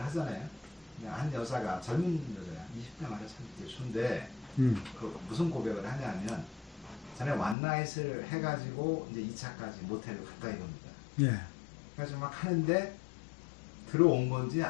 그냥 한 여자가 젊은 여자야, 20대 말에 30대 초인데 그 무슨 고백을 하냐면 전에 원나잇을 해가지고 이제 2차까지 모텔을 갔다 이겁니다. 예. 그래서 막 하는데 들어온 건지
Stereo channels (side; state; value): right; drops out; at 7.6 s